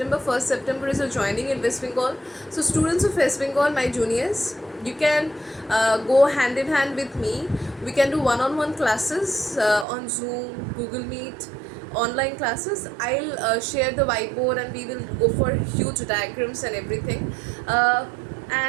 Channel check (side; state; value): left; drops out; at 9.9 s